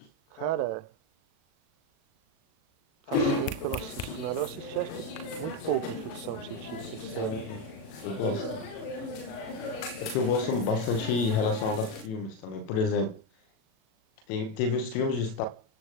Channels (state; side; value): late; right; 37 ms